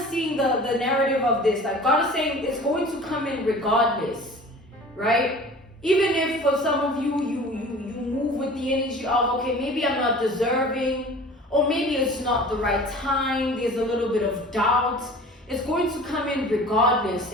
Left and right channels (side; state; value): both; normal; correlation 0.43